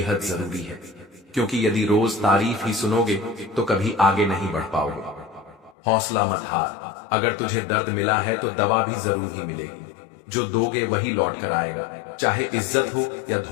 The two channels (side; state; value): right; drops out; at 5.8 s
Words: जरूरी है, क्योंकि यदि रोज तारीफ ही सुनोगे तो कभी आगे नहीं बढ़ पाओगे। हौसला मत हार, अगर तुझे दर्द मिला है तो दवा भी जरूर ही मिलेगी। जो दोगे वही लौट कर आएगा, चाहे इज्जत हो या